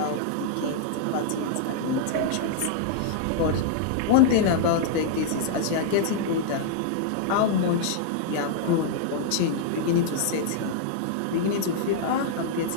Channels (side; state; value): both; different; correlation -0.01